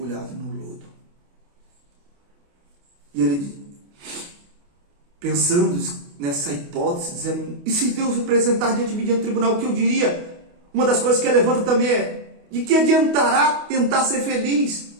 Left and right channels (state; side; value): late; left; 28 ms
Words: no lodo. E ele, pensando nessa hipótese, dizendo: e se Deus apresentar diante de mim diante do tribunal, o que eu diria? Uma das coisas que ele levanta também é: de que adiantará tentar ser feliz?